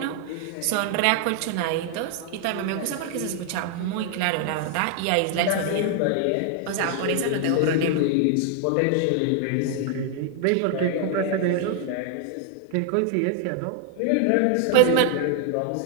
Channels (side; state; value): both; different; correlation 0.00